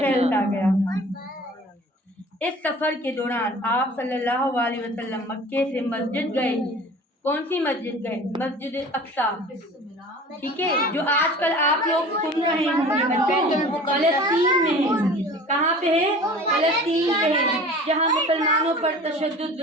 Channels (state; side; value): normal; both; correlation 0.43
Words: گیا۔ اس سفر کے دوران آپ صلی اللہ علیہ وسلم مکے سے مسجد گئے۔ کون سی مسجد گئے؟ مسجد اقصی، ٹھیک ہے، جو آج کل آپ لوگ سن رہے ہوں گے فلسطین میں ہے۔ کہاں پہ ہے؟ فلسطین پہ ہے، جہاں مسلمانوں پر تشدد،